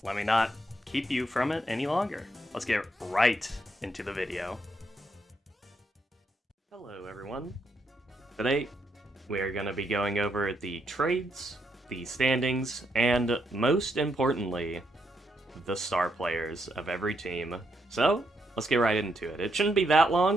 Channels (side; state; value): both; normal; correlation 0.78